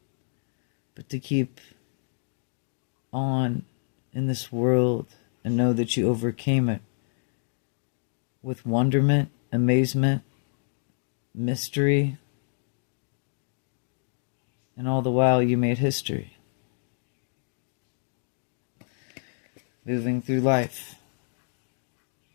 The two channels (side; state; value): right; silent; digital silence